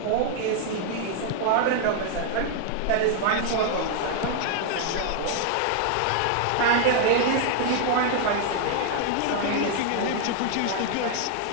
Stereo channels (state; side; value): different; both; correlation 0.00